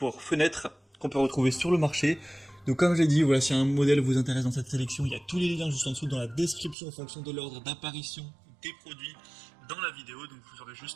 fenêtres qu'on peut retrouver sur le marché. Donc comme j'ai dit, voilà, si un modèle vous intéresse dans cette sélection, il y a tous les liens juste en dessous dans la description en fonction de l'ordre d'apparition des produits dans la vidéo. Donc vous aurez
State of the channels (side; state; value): left; drops out; at 6.8 s